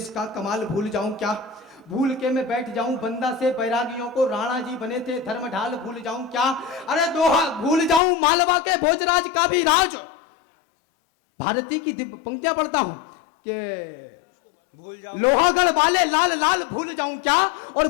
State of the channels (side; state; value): right; drops out; at 8.0 s